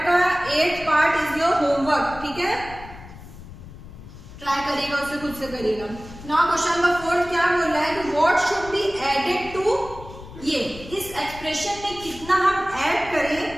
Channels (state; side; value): noise; left; rumble, 16 dB below the sound